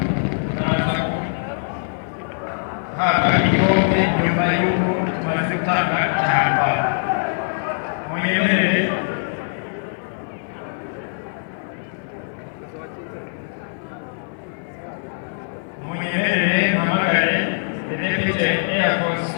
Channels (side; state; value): right; silent; 57 dB below the other